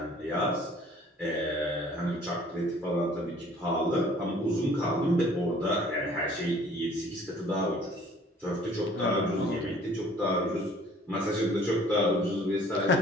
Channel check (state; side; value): normal; both; correlation 0.54